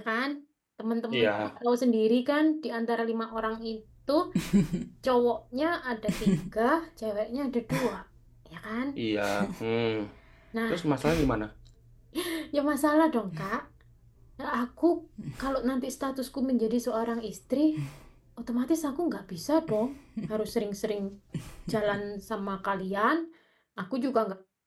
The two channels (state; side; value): identical; both; correlation 1.00